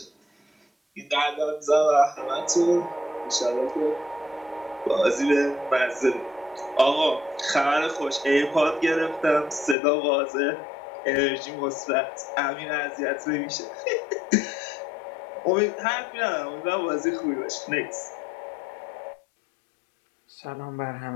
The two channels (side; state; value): right; drops out; at 9.8 s